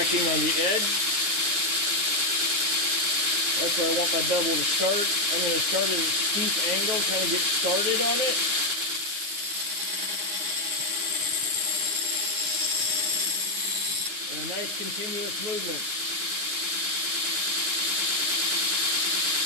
on the edge. That's where I want my bevel to start. I'm going to start at a steep angle, kind of get started on it. And a nice continuous movement.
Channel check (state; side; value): late; left; 9.7 ms